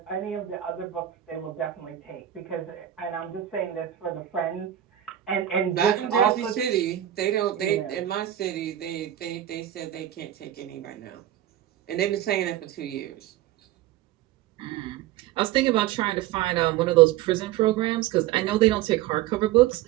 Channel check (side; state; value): left; quieter; 12.4 dB